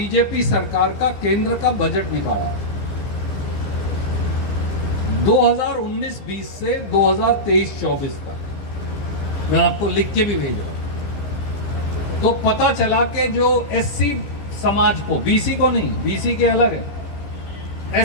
सरकार का केंद्र का बजट निकाला, 2019-20 से 2023-24 तक, मैं आपको लिख के भी भेज रहा हूं। तो पता चला कि जो SC समाज को, BC को नहीं, BC के अलग है,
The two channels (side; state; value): right; late; 15 ms